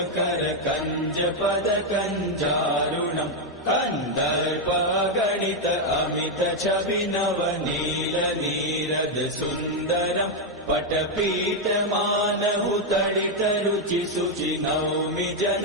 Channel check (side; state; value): both; normal; correlation 0.02